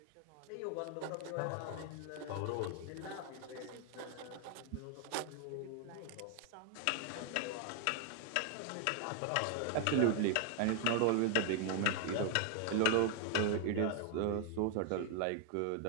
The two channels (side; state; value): both; different; correlation 0.00